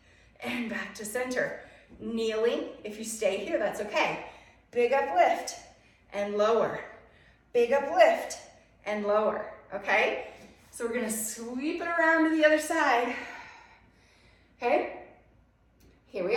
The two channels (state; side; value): identical; both; correlation 1.00